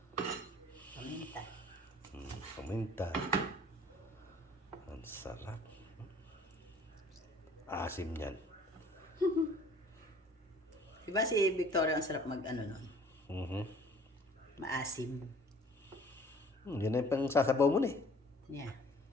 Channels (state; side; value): normal; both; correlation 0.52